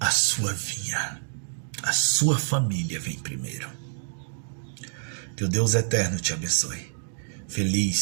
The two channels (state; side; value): silent; left; digital silence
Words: sua vinha. A sua família vem primeiro. Que o Deus eterno te abençoe.